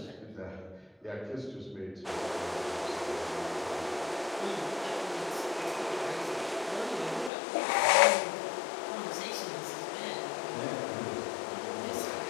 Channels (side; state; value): right; drops out; at 7.3 s